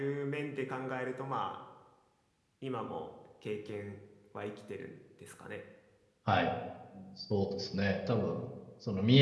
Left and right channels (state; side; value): identical; both; correlation 1.00